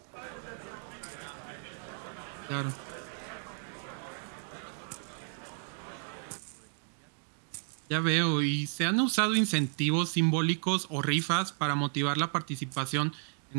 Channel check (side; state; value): left; silent; 56 dB below the other